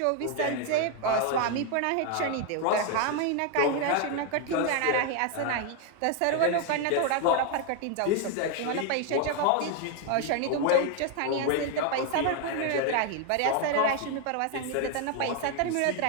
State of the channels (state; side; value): different; both; correlation 0.01